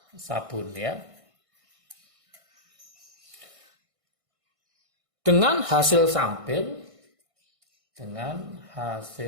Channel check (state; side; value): late; left; 1.6 ms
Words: sabun ya. Dengan hasil samping,